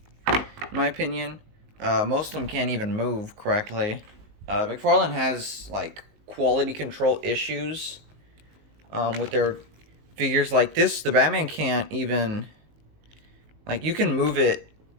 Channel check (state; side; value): late; left; 19 ms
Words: in my opinion. Most of them can't even move correctly. McFarlane has like quality control issues with their figures like this. The Batman can't even. Like, you can move it,